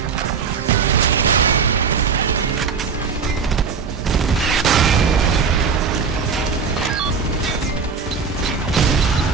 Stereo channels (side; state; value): left; quieter; 5.7 dB